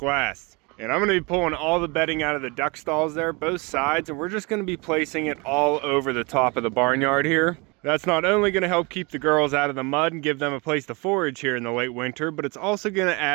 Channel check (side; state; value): left; quieter; 28.1 dB